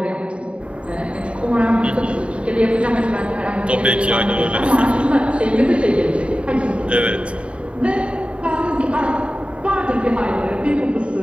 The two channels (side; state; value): left; late; 0.059 ms